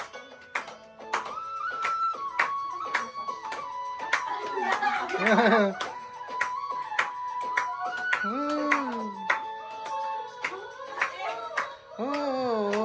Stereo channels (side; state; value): both; identical; correlation 1.00